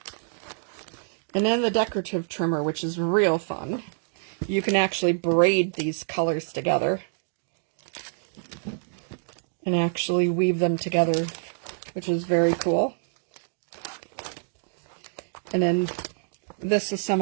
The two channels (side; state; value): left; silent; digital silence